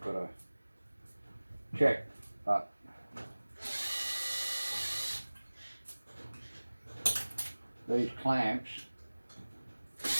got to check. But these clamps,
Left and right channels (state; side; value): inverted; both; correlation -1.00